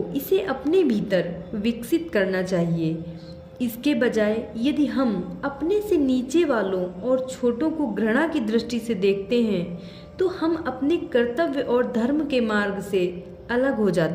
इसे अपने भीतर विकसित करना चाहिए। इसके बजाय यदि हम अपने से नीचे वालों और छोटों को घृणा की दृष्टि से देखते हैं, तो हम अपने कर्तव्य और धर्म के मार्ग से अलग हो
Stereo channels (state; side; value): identical; both; correlation 1.00